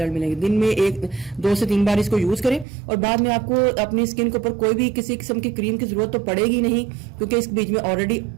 मिलेंगे। दिन में 2 से 3 बार इसको यूज करें और बाद में आपको अपनी स्किन के ऊपर कोई भी किसी किस्म की क्रीम की जरूरत तो पड़ेगी नहीं क्योंकि इस बीच में ऑलरेडी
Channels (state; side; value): drops out; left; at 2.7 s